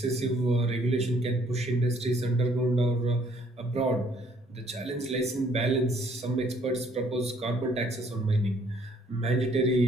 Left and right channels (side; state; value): both; normal; correlation 0.63